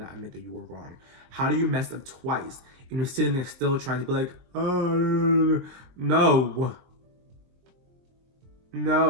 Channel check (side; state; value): left; late; 22 ms